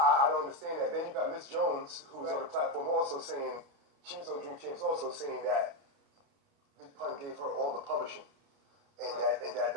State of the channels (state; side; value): late; left; 29 ms